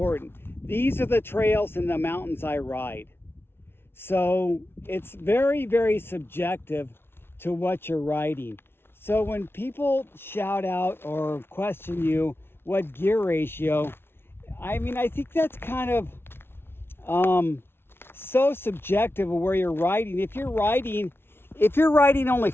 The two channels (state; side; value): late; right; 0.11 ms